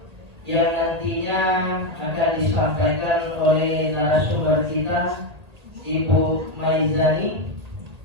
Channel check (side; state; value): left; late; 1.8 ms